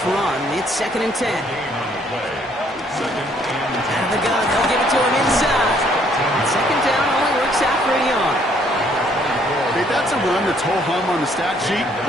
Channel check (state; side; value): normal; both; correlation 0.65